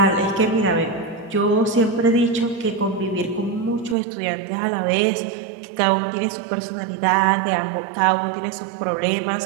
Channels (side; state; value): left; drops out; at 4.0 s